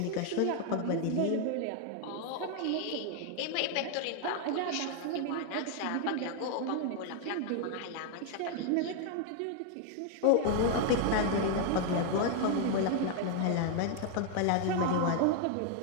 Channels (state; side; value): different; both; correlation 0.00